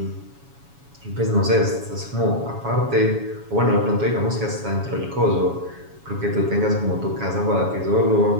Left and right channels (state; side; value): late; left; 7.2 ms